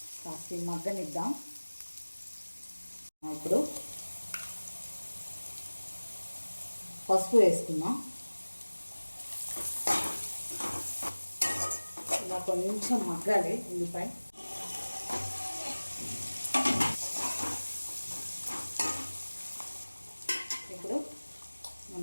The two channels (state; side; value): inverted; both; correlation -1.00